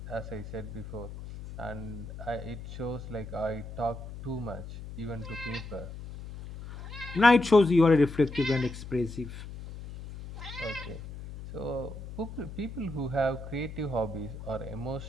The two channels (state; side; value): noise; left; hum, 11 dB below the sound